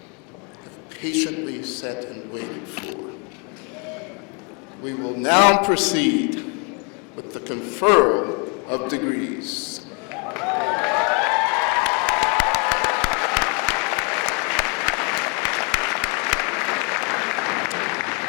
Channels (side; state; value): right; quieter; 35.0 dB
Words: have patiently sat and waited for. We will now proceed with the conferral of degrees.